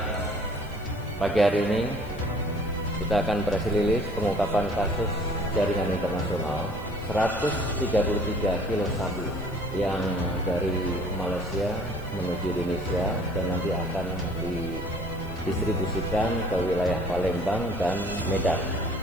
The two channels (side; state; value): left; noise; hiss, 25 dB below the sound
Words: pagi hari ini kita akan press release pengungkapan kasus jaringan internasional 133 kilo sabu yang dari Malaysia menuju Indonesia dan nanti akan didistribusikan ke wilayah Palembang dan Medan.